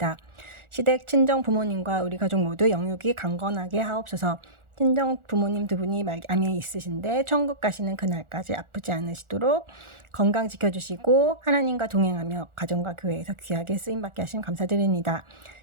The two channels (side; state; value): left; late; 1.4 ms